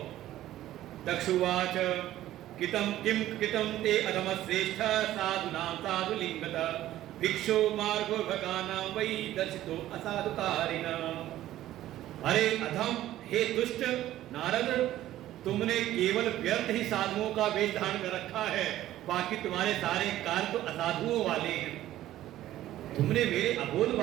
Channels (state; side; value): quieter; left; 13.9 dB